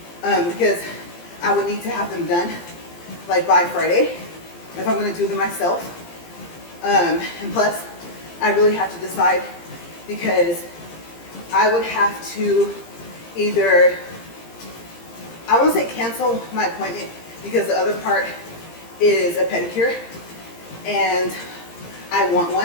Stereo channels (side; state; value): right; late; 17 ms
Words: because I would need to have them done like by Friday if I'm going to do them myself. And plus, I really have to decide, because I would have to either, I won't say cancel my appointment, because the other part is a pedicure and I want